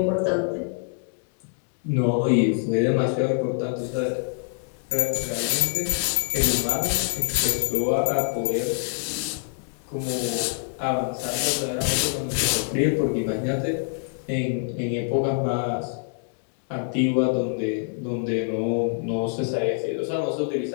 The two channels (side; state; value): right; silent; digital silence